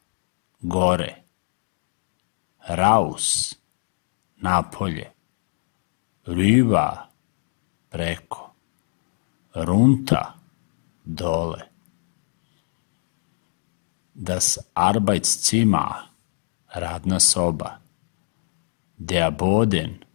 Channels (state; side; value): silent; right; digital silence